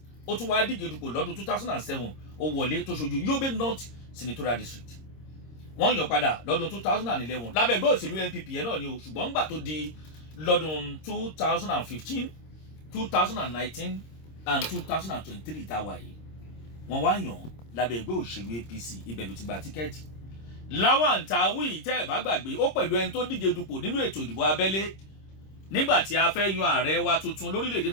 ó tún wá díje dupò lọ́dún 2007 ó wọlé tó ṣojú Yobe North Senatorial District wọ́n yàn padà lọ́dún 2011 lábẹ́ ẹgbẹ́ òṣèlú NPP yẹn náà ni o ṣùgbọ́n ńgbà tó di lọ́dún 2015 2019 and 2023 tá a wà yìí wọ́n wá yàn lábẹ́ ẹgbẹ́ òṣèlú APC ibẹ̀ ló ti gba tíkẹ́ẹ̀tì. Lawan Tawi tẹ́ ẹ̀ bá gbàgbé ó pẹ̀lú ẹni tó díje dupò nínú ètò ìdìbò abẹ́lé nígbà tí a fẹ́ yan ààrẹ wa tuntun lórílẹ̀‐èdè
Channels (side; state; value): right; late; 26 ms